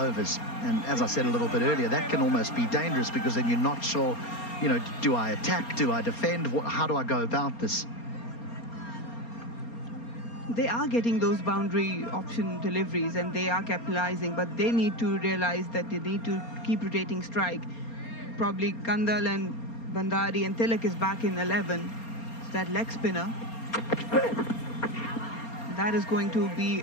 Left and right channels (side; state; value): right; late; 4.3 ms